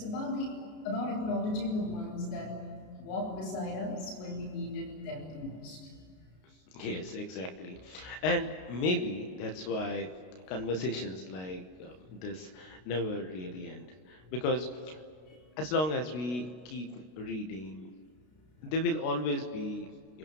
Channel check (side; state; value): right; late; 32 ms